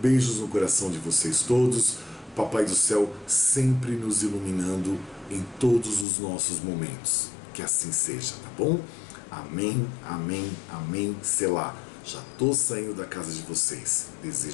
no coração de vocês todos, Papai do Céu sempre nos iluminando em todos os nossos momentos, que assim seja, tá bom? Amém, amém, amém, selá. Já tô saindo da casa de vocês,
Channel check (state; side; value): drops out; right; at 6.1 s